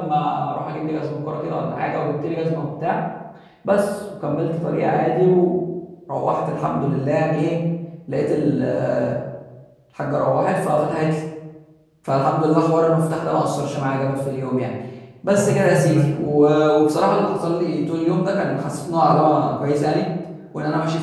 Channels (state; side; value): identical; both; correlation 1.00